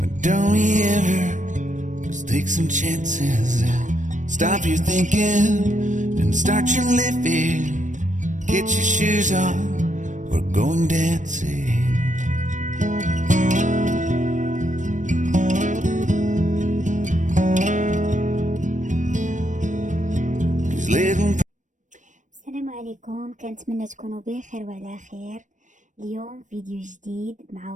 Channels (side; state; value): left; late; 0.36 ms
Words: don't we ever just take some chances and stop your thinking and start your living. Get your shoes on, we're going dancing. These little السلام عليكم، كنتمنى تكونوا بخير وعلى خير. اليوم فيديو جديد مع